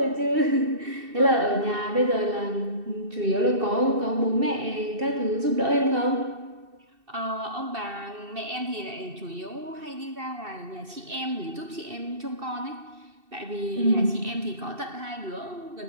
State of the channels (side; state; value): left; late; 2.7 ms